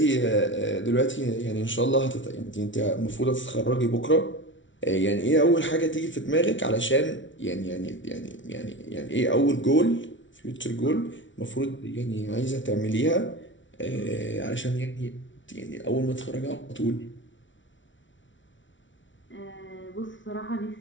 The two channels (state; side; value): late; right; 0.56 ms